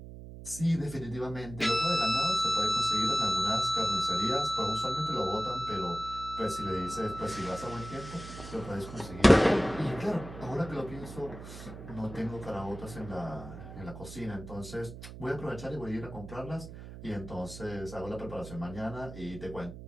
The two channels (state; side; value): noise; right; hum, 12 dB below the sound